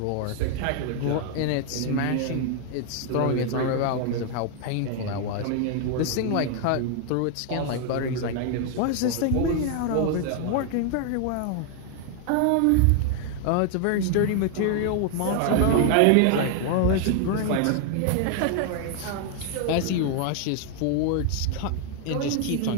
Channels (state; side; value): different; both; correlation 0.00